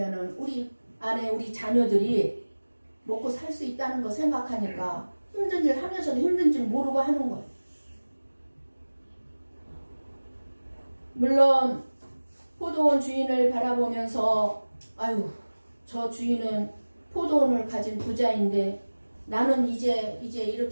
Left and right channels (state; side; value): inverted; both; correlation -1.00